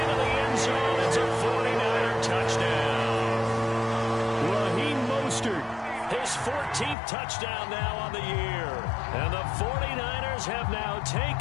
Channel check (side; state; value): right; drops out; at 7.0 s